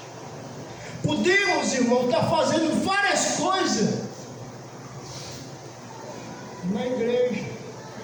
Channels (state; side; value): identical; both; correlation 1.00